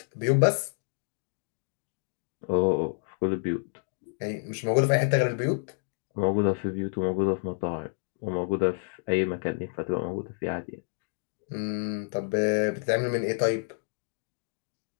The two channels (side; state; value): right; silent; digital silence